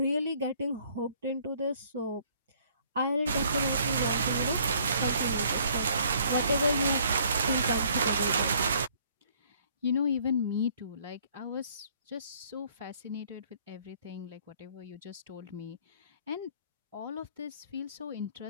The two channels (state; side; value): inverted; both; correlation -0.61